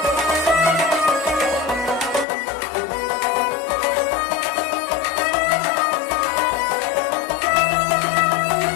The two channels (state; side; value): drops out; right; at 2.2 s